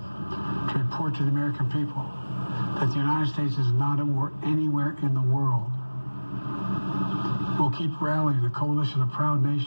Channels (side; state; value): both; inverted; correlation -1.00